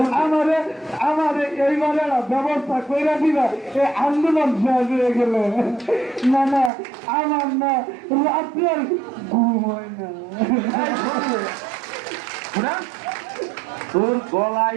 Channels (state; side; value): drops out; left; at 6.7 s